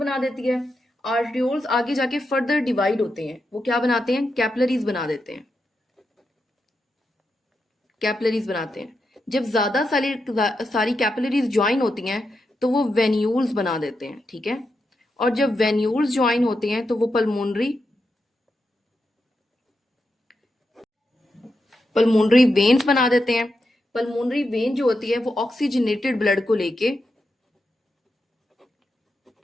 देती है। आर्टरियोल्स आगे जाके फर्दर डिवाइड होते हैं, वो क्या बनाते हैं? कैपिलरीज बना देते हैं। कैपिलरीज बनाते हैं। जब ज्यादा सारी कैपिलरीज ज्वाइन होती हैं तो वो वेन्यूल्स बना देते हैं। ठीक है, और जब वेन्यूल्स ज्वाइन होते हैं तो वो पल्मोनरी वेन्स बना देते हैं। पल्मोनरी वेन जो होती है वो ऑक्सीजनेटेड ब्लड को लेके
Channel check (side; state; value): both; normal; correlation 0.86